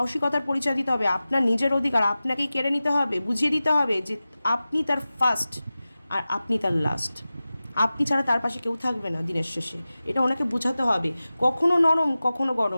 পরিচয় দিতে হবে, আপনার নিজের অধিকার আপনাকেই কেড়ে নিতে হবে, বুঝিয়ে দিতে হবে যে আপনি তার ফার্স্ট আর আপনি তার লাস্ট, আপনি ছাড়া তার পাশে কেউ থাকবে না দিনের শেষে, এটা ওনাকে বোঝাতে হবে। কখনো নরম কখনো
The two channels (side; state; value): both; inverted; correlation -0.96